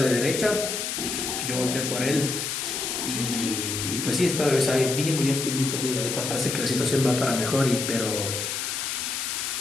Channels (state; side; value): noise; left; hiss, 3 dB below the sound